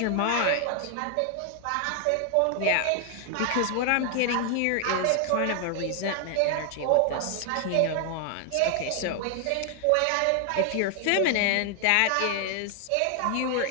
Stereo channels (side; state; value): both; different; correlation 0.00